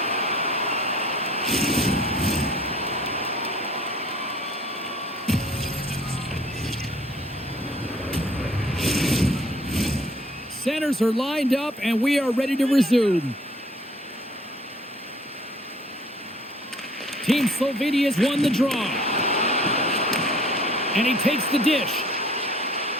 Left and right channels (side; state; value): both; normal; correlation 0.55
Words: Centers are lined up, and we are ready to resume. Team Slovenia's won the draw. And he takes the dish.